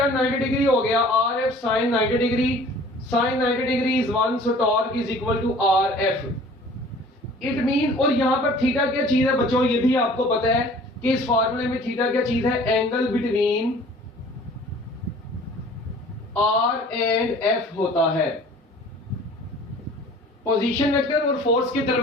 90 डिग्री हो गया, R F sine 90 degree, sine 90 degree is 1, so torque is equal to R F. It mean, और यहां पर थीटा क्या चीज है बच्चों, ये भी आपको पता है कि इस फार्मूले में थीटा क्या चीज है, angle between R and F होता है। पोजीशन वेक्टर और फोर्स के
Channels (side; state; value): both; normal; correlation 0.49